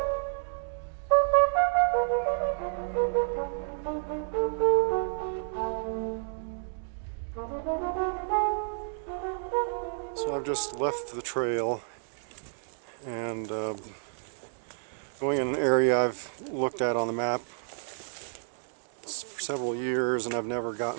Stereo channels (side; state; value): left; silent; digital silence